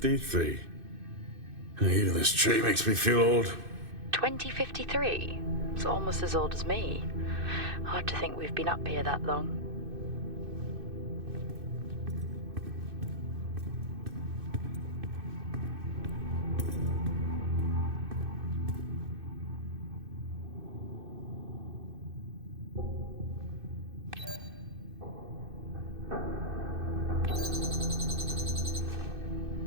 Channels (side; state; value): left; late; 2.6 ms